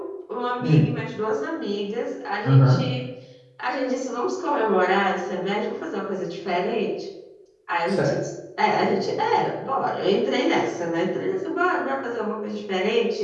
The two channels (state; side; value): identical; both; correlation 1.00